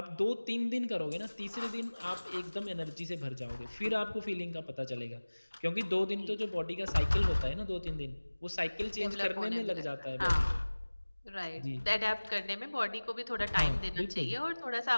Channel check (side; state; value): both; inverted; correlation -1.00